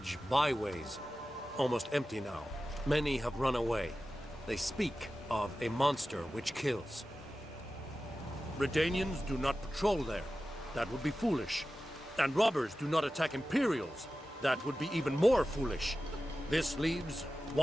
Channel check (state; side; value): normal; both; correlation 0.94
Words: Byways. Almost empty now. Many have run away. They speak of a monster which kills. Redanians do not patrol there. That would be foolish. And robbers do not attack Imperials. That would be even more foolish. This leaves